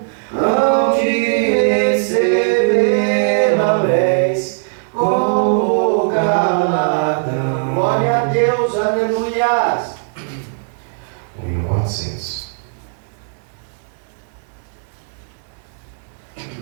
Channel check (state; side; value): silent; left; 67 dB below the other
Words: hão de receber lauréis como galardão. Glória a Deus, aleluia. O hino 400.